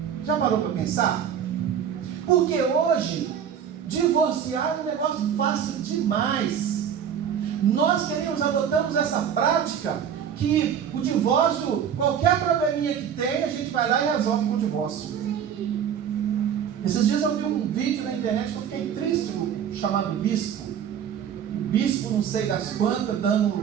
Já parou para pensar? Porque hoje, divorciar é um negócio fácil demais. Nós adotamos essa prática que o divórcio, qualquer probleminha que tem, a gente vai lá e resolve com o divórcio. Esses dias eu vi um vídeo na internet que eu fiquei triste, chamado Bispo. O bispo, não sei das quantas,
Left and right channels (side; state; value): left; quieter; 8.4 dB